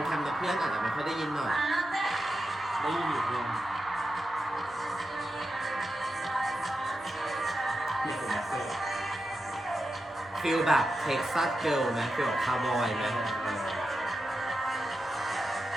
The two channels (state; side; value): normal; both; correlation 0.89